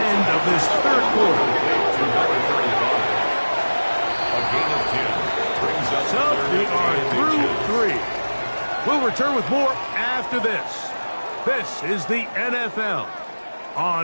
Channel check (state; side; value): inverted; both; correlation -1.00